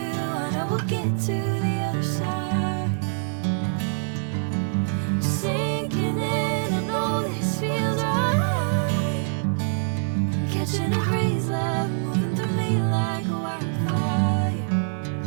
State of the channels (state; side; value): silent; left; digital silence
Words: know we'll get to the other side. Sinking in, I know this feels right. Catching a crazy love, moving through me like a wildfire,